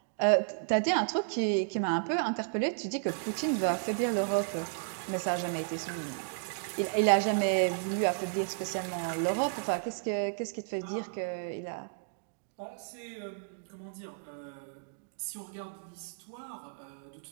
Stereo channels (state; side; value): silent; left; digital silence